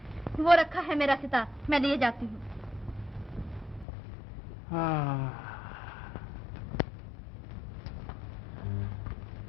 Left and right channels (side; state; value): right; drops out; at 3.9 s